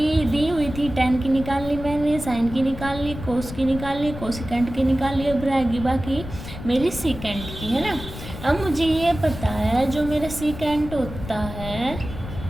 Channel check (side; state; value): left; noise; rumble, 10 dB below the sound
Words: दी हुई थी 10 की निकाल ली मैंने, साइन की निकाल ली, कोस की निकाल ली, कोसिकेंट की निकाल ली, अब रहेगी बाकी मेरी सीकेंट की, है ना। अब मुझे ये पता है जो मेरा सीकेंट होता है